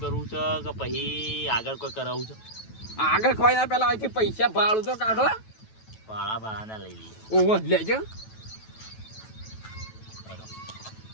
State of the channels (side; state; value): right; late; 9.2 ms